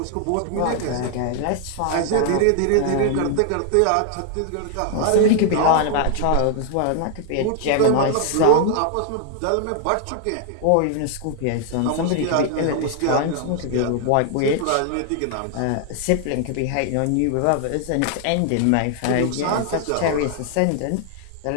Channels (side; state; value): both; different; correlation 0.00